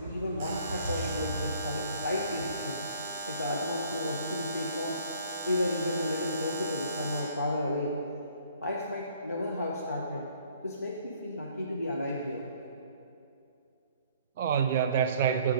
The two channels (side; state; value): both; inverted; correlation -0.59